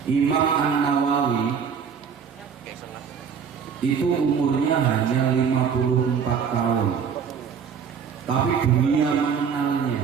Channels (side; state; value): left; quieter; 6.8 dB